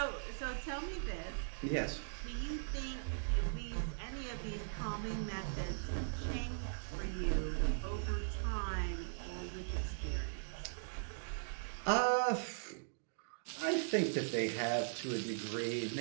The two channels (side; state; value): left; silent; digital silence